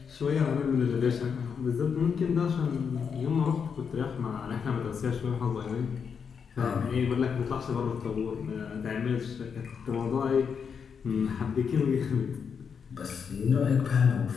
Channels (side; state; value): right; quieter; 6.5 dB